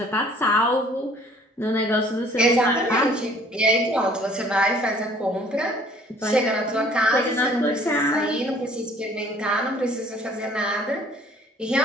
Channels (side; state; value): both; normal; correlation 0.55